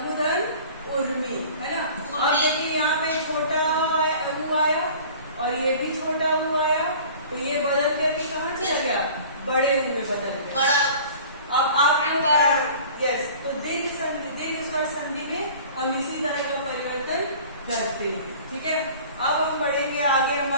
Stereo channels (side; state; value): both; inverted; correlation -0.45